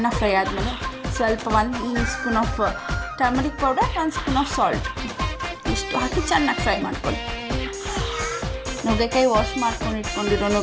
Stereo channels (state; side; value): identical; both; correlation 1.00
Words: ಫ್ರೈ ಆದಮೇಲೆ ಸ್ವಲ್ಪ 1 spoon of turmeric powder, 1 spoon of salt ಇಷ್ಟು ಹಾಕಿ ಚೆನ್ನಾಗಿ ಫ್ರೈ ಮಾಡ್ಕೊಳ್ಳಿ. ನುಗ್ಗೆಕಾಯಿ ವಾಶ್ ಮಾಡ್ಕೊಂಡು ಇಟ್ಕೊಂಡಿರೋ